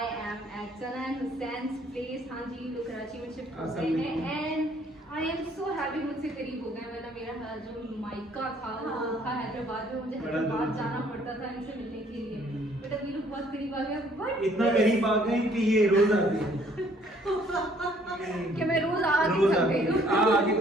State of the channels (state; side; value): normal; both; correlation 0.62